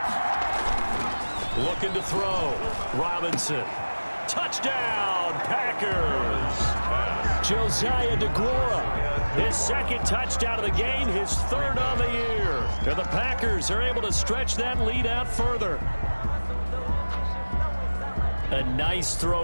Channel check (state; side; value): inverted; both; correlation -1.00